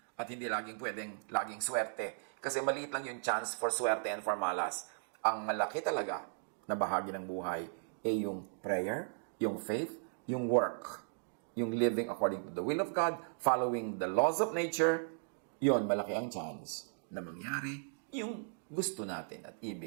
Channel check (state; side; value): silent; left; digital silence